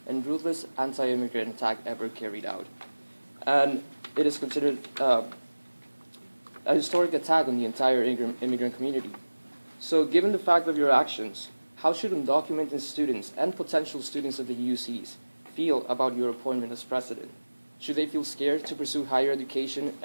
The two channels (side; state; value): both; inverted; correlation -1.00